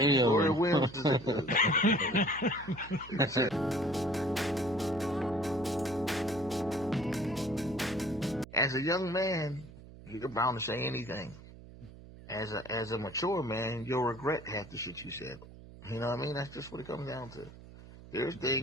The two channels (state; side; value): noise; right; hum, 18 dB below the sound